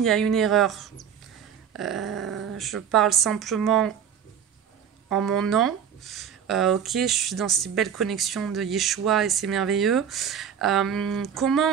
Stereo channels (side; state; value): left; quieter; 8.2 dB